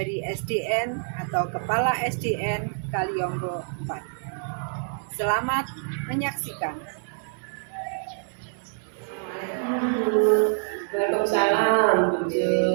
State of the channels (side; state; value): left; silent; 61 dB below the other